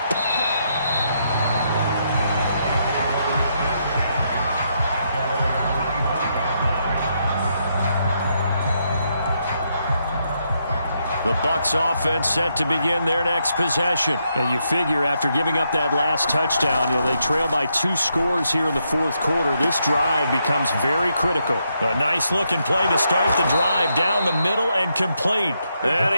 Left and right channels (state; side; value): inverted; both; correlation -0.79